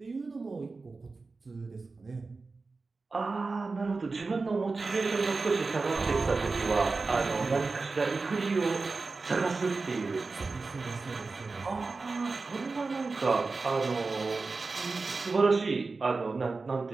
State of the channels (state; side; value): quieter; left; 3.9 dB